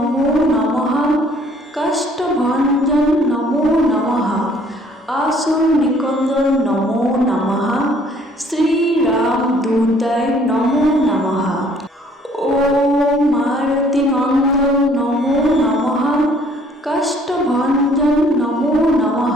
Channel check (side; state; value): both; normal; correlation 0.59